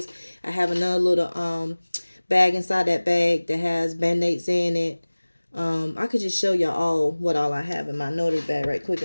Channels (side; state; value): both; inverted; correlation -1.00